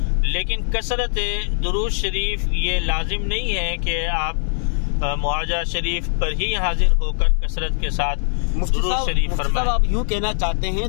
लेकिन कसरत दुरूद शरीफ ये लाजिम नहीं है कि आप मुआजा शरीफ पर ही हाजिर होकर कसरत के साथ दुरूद शरीफ फरमाएं। आप यूँ कहना चाहते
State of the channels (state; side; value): silent; right; digital silence